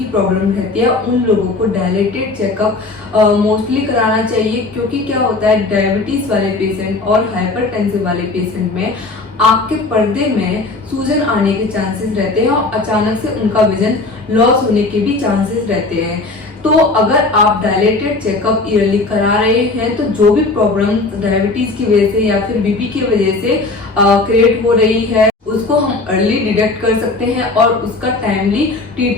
प्रॉब्लम रहती है उन लोगों को डायलेटेड चेकअप मोस्टली कराना चाहिए। क्योंकि क्या होता है, डायबिटीज वाले पेशेंट और हाइपरटेंसिव वाले पेशेंट में आपके पर्दे में सूजन आने के चांसेस रहते हैं और अचानक से उनका विजन लॉस होने के भी चांसेस रहते हैं। तो अगर आप डायलेटेड चेकअप ईयरली करा रहे हैं तो जो भी प्रॉब्लम डायबिटीज की वजह से या फिर बीपी की वजह से क्रिएट हो रही है उसको हम अर्ली डिटेक्ट कर सकते हैं और उसका टाइमली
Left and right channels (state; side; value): quieter; right; 3.4 dB